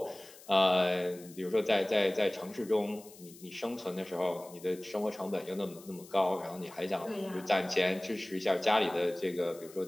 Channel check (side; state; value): left; noise; hiss, 20 dB below the sound